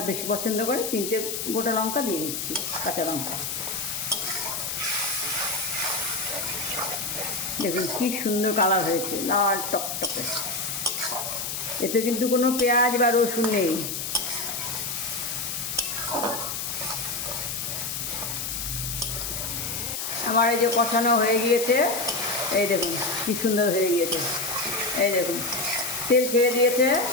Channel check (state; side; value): noise; left; hiss, 4 dB below the sound